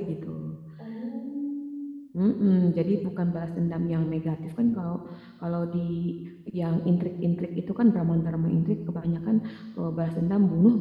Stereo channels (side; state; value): both; identical; correlation 1.00